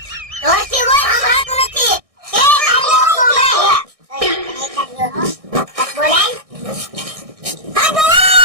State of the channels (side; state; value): left; late; 1.6 ms